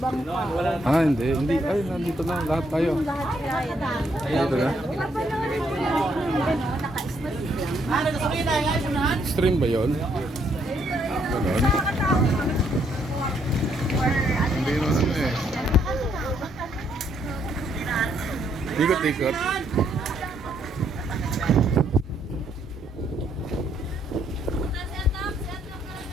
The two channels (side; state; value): both; normal; correlation 0.72